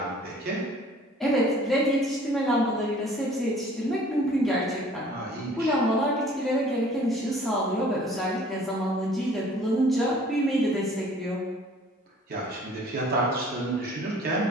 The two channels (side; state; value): both; normal; correlation 0.52